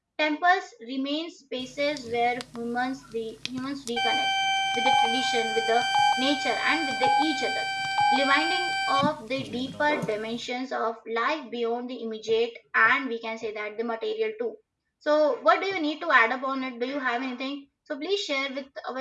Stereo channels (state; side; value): identical; both; correlation 1.00